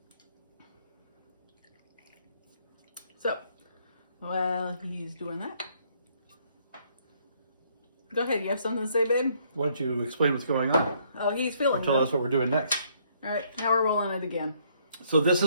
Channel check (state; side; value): inverted; both; correlation -0.67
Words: So, while he's doing that, go ahead. You have something to say, babe? Why don't you explain what's going on? Oh, he's feeling Tell it. us what we're doing next. All right, now we're rolling it again. So this